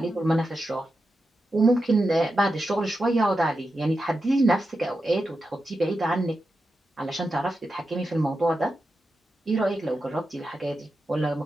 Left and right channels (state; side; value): normal; both; correlation 0.89